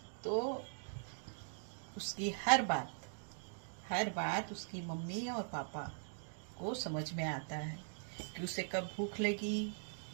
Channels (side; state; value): left; silent; digital silence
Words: तो उसकी हर बात उसकी मम्मी और पापा को समझ में आता है कि उसे कब भूख लगी,